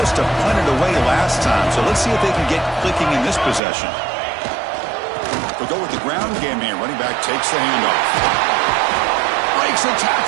to punt it away last time, so let's see if they can get clicking in this possession. They'll go with the ground game here. Running back takes the handoff. Breaks a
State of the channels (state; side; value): drops out; left; at 3.6 s